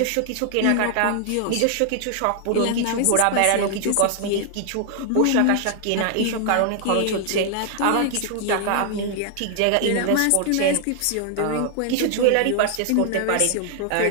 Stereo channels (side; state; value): both; different; correlation 0.00